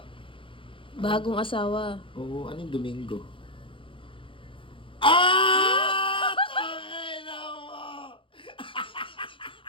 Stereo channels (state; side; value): late; right; 0.25 ms